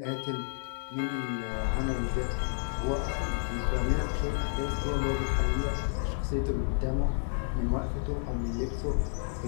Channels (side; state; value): right; silent; digital silence